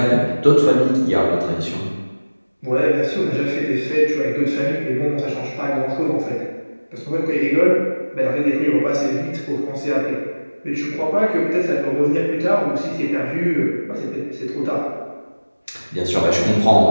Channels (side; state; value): both; inverted; correlation -1.00